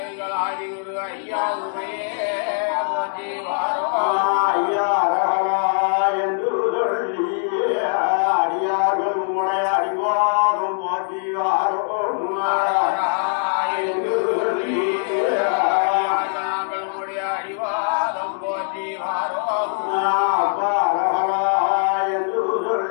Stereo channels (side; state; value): right; silent; digital silence